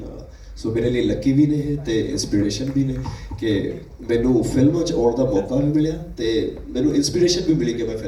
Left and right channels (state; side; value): identical; both; correlation 1.00